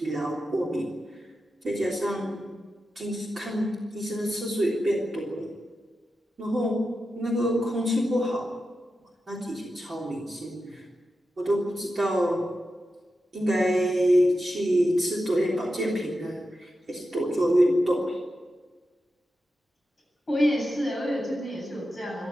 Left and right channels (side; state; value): both; normal; correlation 0.90